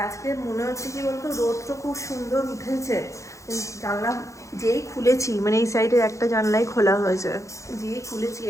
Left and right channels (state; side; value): late; right; 0.15 ms